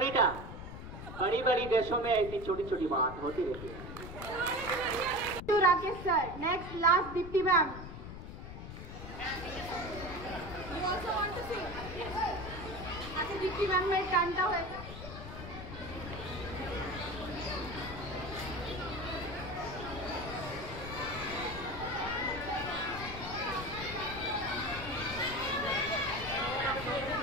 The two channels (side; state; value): left; noise; rumble, 10 dB below the sound